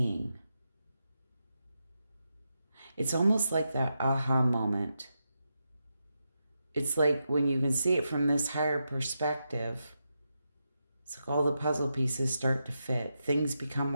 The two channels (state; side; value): inverted; both; correlation -0.86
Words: It's almost like that aha moment. It's like when you can see it from this higher perspective, it's like all the puzzle pieces start to fit. Things become